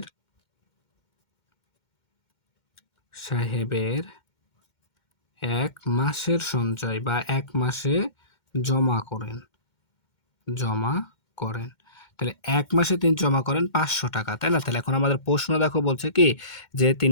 ১ মাসের সঞ্চয় বা ১ মাসে জমা করেন। তাহলে ১ মাসে তিনি জমা করেন ৫০০ টাকা, তাই না? তাহলে এখন আমাদের প্রশ্ন দেখো, বলছে কি, যে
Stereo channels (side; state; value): right; late; 2.1 ms